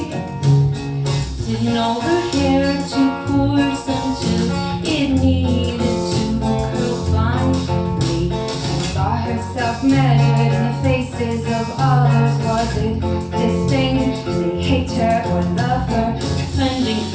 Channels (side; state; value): both; identical; correlation 1.00